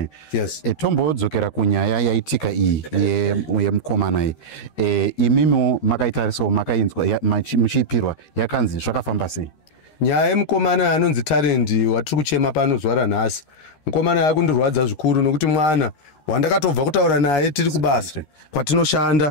Yes. Tombodzokera kunyaya yaitika iyi yemukomana iyi imimi makaitarisawo makainzwa muchiipirwa yakanzi zvakafamba sei? Nyaya yemukomana anonzi Talent watiri kuchema pano zuva ranhasi mukomana yakundirwadza zvikuru nokuti mwana wandakatobva kutaura naye tiri kubasa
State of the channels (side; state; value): right; late; 13 ms